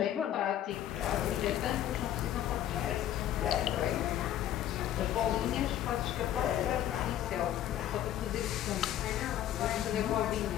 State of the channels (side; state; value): right; quieter; 11.7 dB